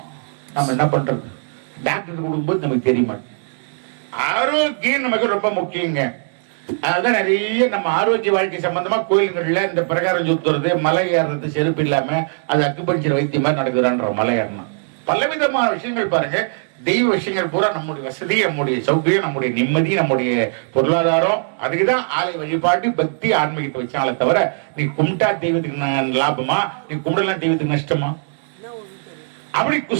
நம்ம என்ன பண்றது, டாக்டர் கொடுக்கும்போது நமக்கு தெரிய மாட்டேங்குது. ஆரோக்கியம் நமக்கு ரொம்ப முக்கியங்க. அதுதான் நிறைய நம்ம ஆரோக்கிய வாழ்க்கை சம்பந்தமா கோயில்கள்ல இந்த பிரகாரம் சுத்துறது, மலை ஏறுறது, செருப்பு இல்லாம அது அக்குபஞ்சர் வைத்தியம் மாதிரி நடக்குதான்ற மலை ஏறணும். பலவிதமான விஷயங்கள் பாருங்க. தெய்வ விஷயங்கள் பூரா நம்முடைய வசதி, நம்முடைய சௌகரியம், நம்முடைய நிம்மதி, நம்முடைய பொருளாதாரம், அதுக்குதான் ஆலை வழிபாட்டு பக்தி ஆன்மீகத்தை வச்சாலே தவிர நீ கும்பிட்டா தெய்வத்துக்கு லாபமா, நீ கும்பிடலாம் தெய்வத்துக்கு நஷ்டமா? அப்படி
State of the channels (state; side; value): silent; left; digital silence